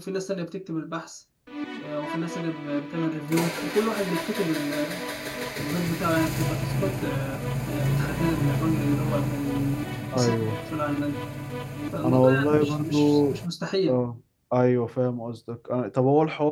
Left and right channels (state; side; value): identical; both; correlation 1.00